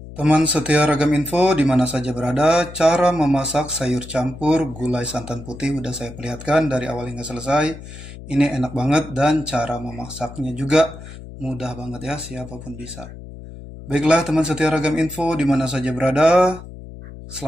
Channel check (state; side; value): noise; left; hum, 14 dB below the sound